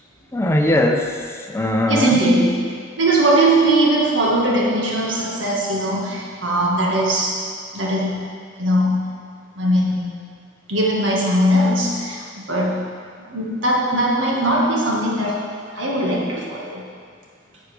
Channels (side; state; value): both; normal; correlation 0.41